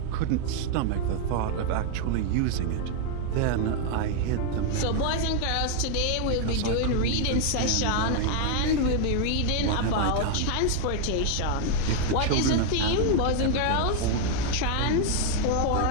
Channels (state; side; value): different; both; correlation 0.00